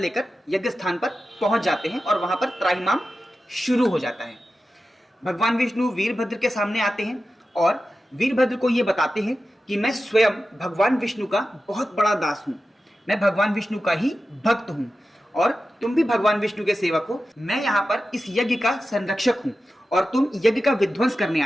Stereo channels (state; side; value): normal; both; correlation 0.93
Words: यज्ञ स्थान पर पहुंच जाते हैं और वहां पर त्राहिमाम शुरू हो जाता है। भगवान विष्णु वीरभद्र के सामने आते हैं और वीरभद्र को ये बताते हैं कि मैं स्वयं भगवान विष्णु का बहुत बड़ा दास हूं, मैं भगवान विष्णु का ही भक्त हूं और तुम भी भगवान विष्णु के सेवक हो। मैं यहाँ पर इस यज्ञ का संरक्षक हूं और तुम यज्ञ का विध्वंस करने